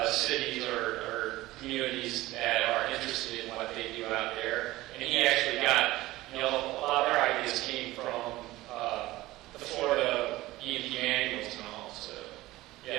cities or communities that are interested in what they do out there. And he actually got, a lot of their ideas came from the Florida E&P manuals and all. So,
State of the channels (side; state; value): left; quieter; 17.8 dB